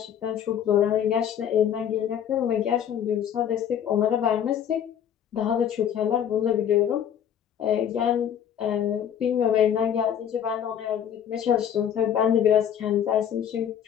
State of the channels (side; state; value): right; quieter; 9.2 dB